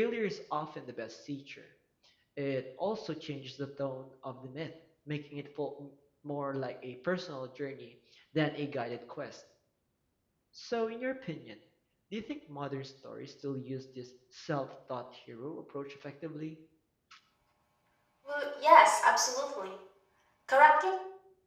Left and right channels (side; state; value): both; identical; correlation 1.00